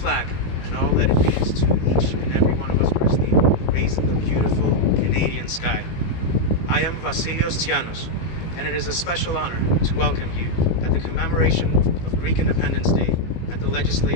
and all that it means to each and every one of us personally raised in the beautiful Canadian sky. I am Vasilios Tsianos, and it is a special honor to welcome you at the commemoration of Greek Independence Day at the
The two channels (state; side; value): late; right; 18 ms